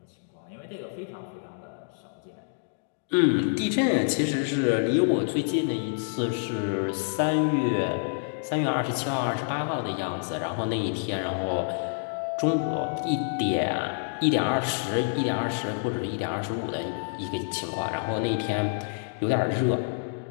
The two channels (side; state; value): right; silent; digital silence